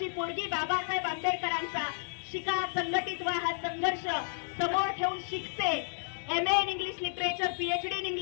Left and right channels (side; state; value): right; silent; digital silence